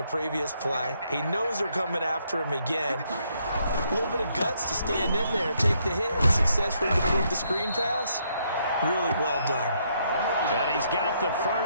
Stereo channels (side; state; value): both; inverted; correlation -0.73